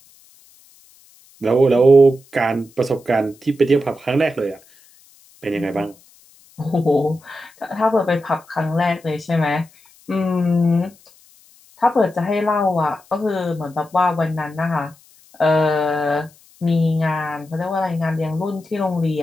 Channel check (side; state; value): left; noise; hiss, 28 dB below the sound